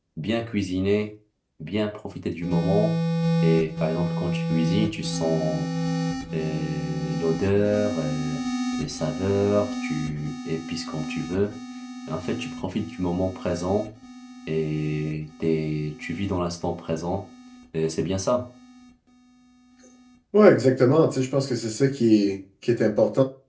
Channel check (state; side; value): identical; both; correlation 1.00